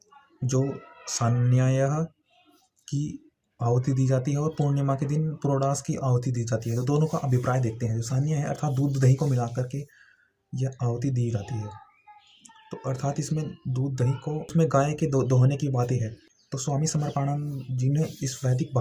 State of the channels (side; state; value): both; identical; correlation 1.00